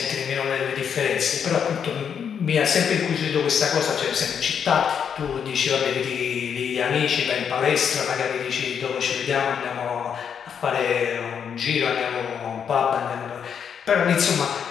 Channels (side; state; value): right; quieter; 7.6 dB